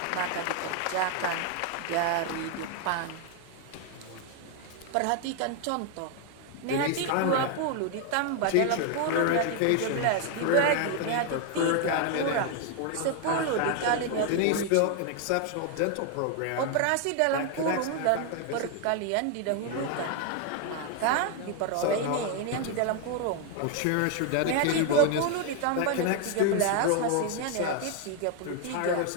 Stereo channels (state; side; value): different; both; correlation 0.01